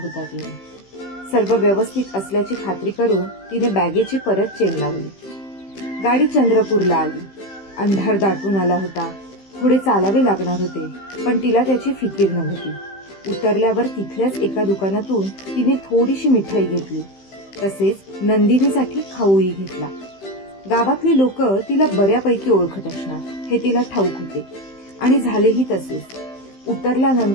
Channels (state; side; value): late; right; 15 ms